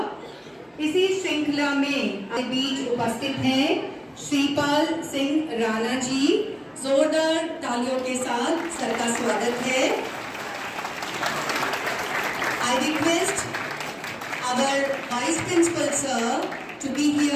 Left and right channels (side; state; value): both; identical; correlation 1.00